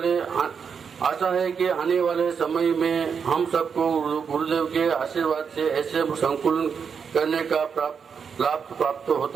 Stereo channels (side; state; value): left; quieter; 6.4 dB